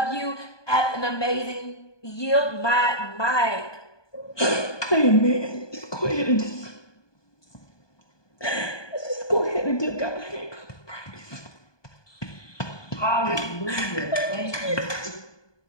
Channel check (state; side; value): late; right; 1.2 ms